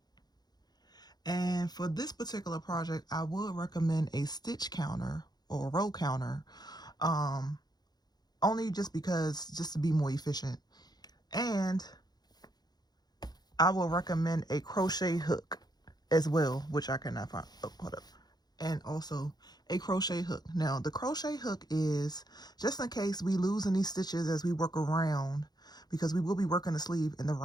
And for this particular project, I would recommend a stitch counter or a row counter. Only just to be more efficient. And I will recommend a crochet hook as well, which I cannot find. Oh, hold up. And also a crochet hook. Now, the crochet hook is just in case we lose any stitches as we work around, because we will be working the sleeve in the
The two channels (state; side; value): late; right; 0.19 ms